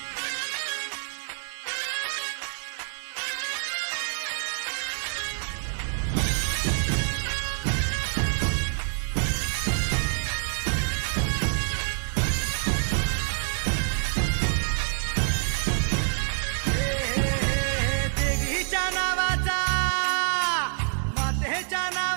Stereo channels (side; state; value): left; silent; 56 dB below the other